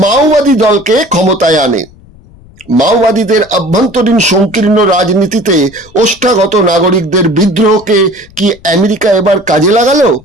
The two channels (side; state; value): left; noise; rumble, 25 dB below the sound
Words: মাওবাদী দলকে ক্ষমতায় আনে। মাওবাদীদের অভ্যন্তরীণ সংকীর্ণ রাজনীতিতে ওষ্ঠাগত নাগরিকদের বিদ্রোহকে কি আমেরিকা এবার কাজে লাগালো?